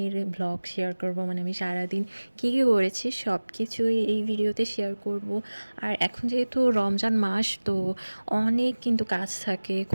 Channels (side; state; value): both; inverted; correlation -1.00